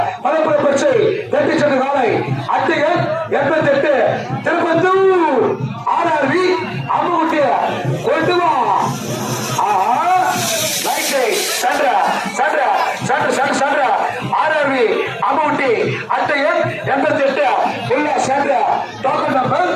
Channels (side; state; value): both; identical; correlation 1.00